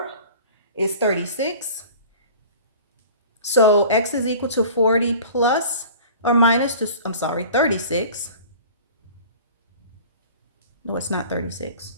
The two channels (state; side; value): inverted; both; correlation -0.42